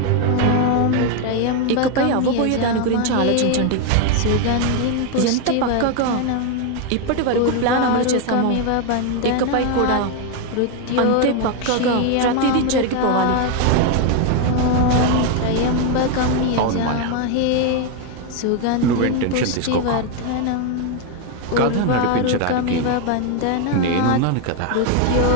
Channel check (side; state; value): both; different; correlation 0.01